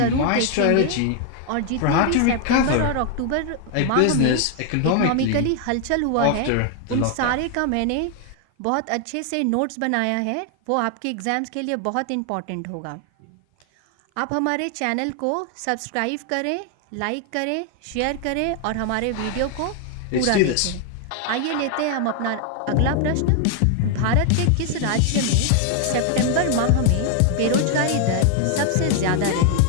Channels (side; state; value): both; different; correlation 0.00